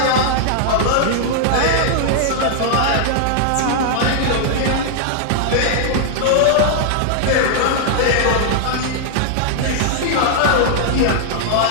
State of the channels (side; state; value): both; different; correlation -0.01